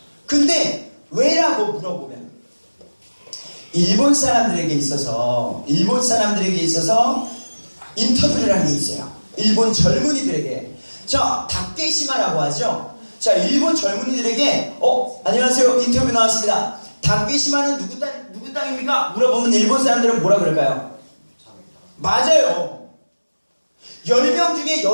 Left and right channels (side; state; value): both; inverted; correlation -1.00